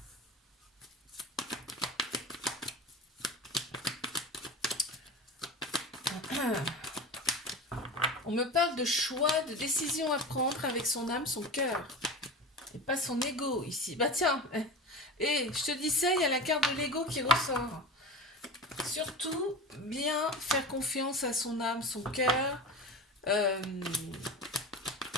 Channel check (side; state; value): both; normal; correlation 0.31